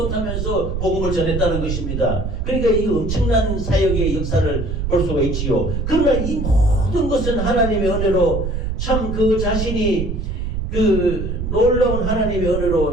복음을 전했다는 것입니다. 그러니까 이 엄청난 사역의 역사를 볼 수가 있지요. 그러나 이 모든 것은 하나님의 은혜로 참 그 자신이 그 놀라운 하나님의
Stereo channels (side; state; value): right; noise; rumble, 3 dB below the sound